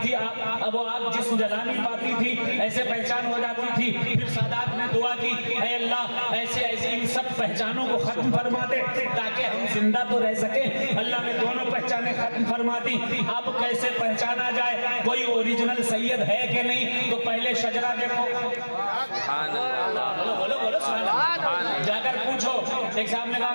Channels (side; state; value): both; inverted; correlation -1.00